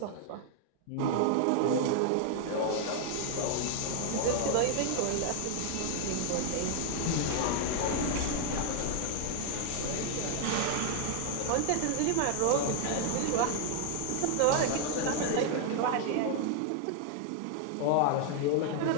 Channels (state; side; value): different; both; correlation 0.00